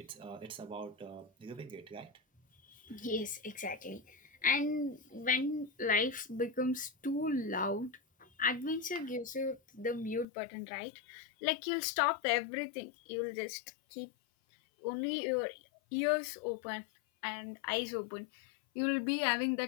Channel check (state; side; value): drops out; right; at 10.2 s